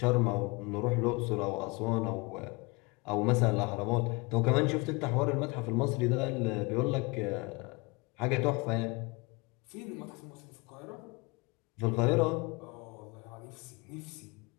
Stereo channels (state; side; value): quieter; right; 26.9 dB